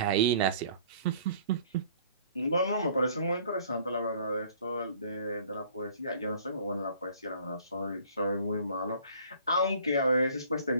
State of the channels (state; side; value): inverted; both; correlation -0.53